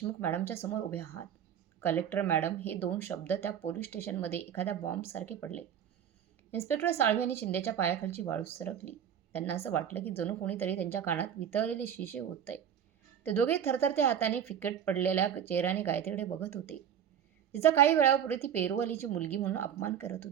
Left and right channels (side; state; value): left; quieter; 9.0 dB